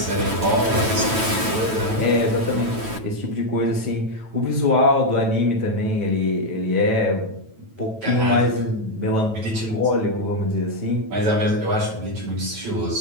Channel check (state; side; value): late; left; 9.1 ms